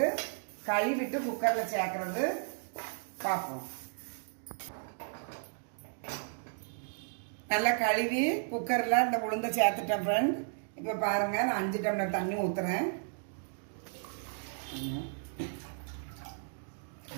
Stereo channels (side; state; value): left; silent; digital silence